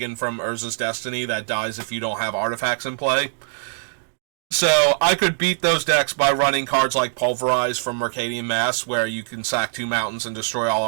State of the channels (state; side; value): silent; left; 64 dB below the other